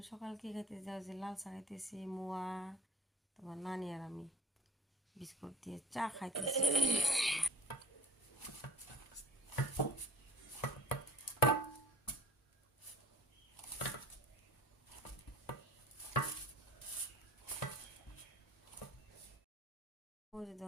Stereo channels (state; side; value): normal; both; correlation 0.47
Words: সকাল কি খাইতেছি যাও যে লাল চা খাইতেছি, মোয়া তোমার নানি আর আমি বিস্কুট দিয়ে চা খাইতেছি। ওই